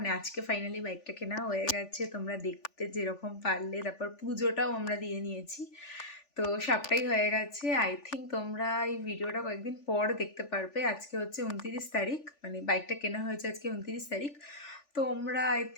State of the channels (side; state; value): right; late; 3.4 ms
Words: আজকে ফাইনালি বাইকটা কেনা হয়ে গেছে, তোমরা দেখতে যেরকম পারলে। তারপর পুজোটাও আমরা দিয়ে নিয়েছি, তো সবটাই হয়ে গেছে। আই থিঙ্ক তোমরা এই ভিডিওটা কয়েকদিন পর দেখতে পারবে। আজকে হচ্ছে 29 তারিখ, মানে বাইকটা কেনা হয়েছে আজকে 29 তারিখ। তোমরা আই